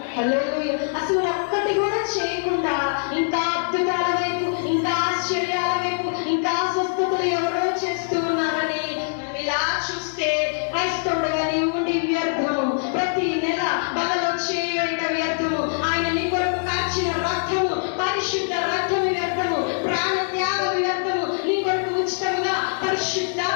హల్లెలూయా. అసలు ఒక్కటి కూడా చేయకుండా ఇంకా అద్భుతాల వైపు, ఇంకా ఆశ్చర్యాల వైపు, ఇంకా స్వస్థతలు ఎవరో చేస్తూ ఉన్నారని మనం ఇలా చూస్తే క్రైస్తవుడుగా నీవు ఉండి వ్యర్థము. ప్రతి నెల బలలో చేయట వ్యర్థము. ఆయన నీ కొరకు కాచిన రక్తము, పరిశుద్ధ రక్తము వ్యర్థము. ప్రాణ త్యాగం వ్యర్థము. నీ కొరకు ఉచితంగా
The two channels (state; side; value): silent; right; digital silence